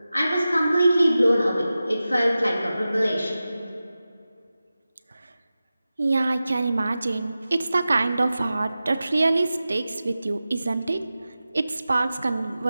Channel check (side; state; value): both; inverted; correlation -0.95